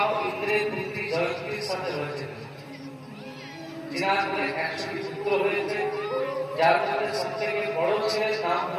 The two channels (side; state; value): both; identical; correlation 1.00